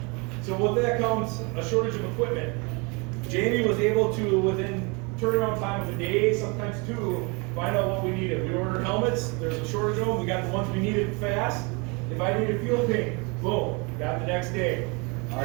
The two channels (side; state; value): left; quieter; 30.3 dB